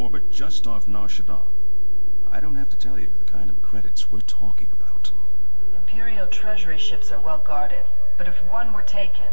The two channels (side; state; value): both; inverted; correlation -1.00